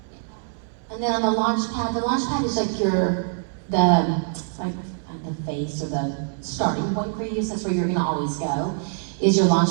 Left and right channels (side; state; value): left; silent; 63 dB below the other